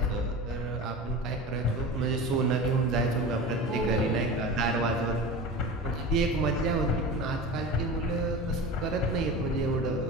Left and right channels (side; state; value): both; normal; correlation 0.31